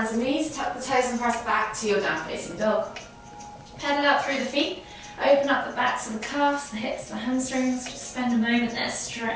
and knees, tuck the toes and press back to your down facing dog. Pedal out through the feet. Open up the backs of the calves, the hips, the hamstrings. Just spend a moment there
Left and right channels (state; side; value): identical; both; correlation 1.00